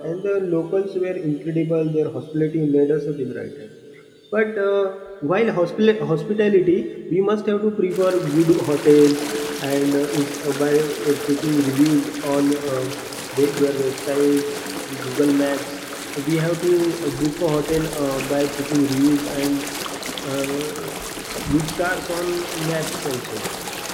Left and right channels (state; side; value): identical; both; correlation 1.00